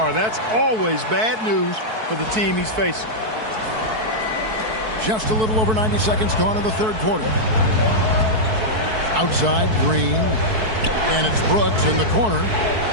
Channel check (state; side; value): late; left; 4.6 ms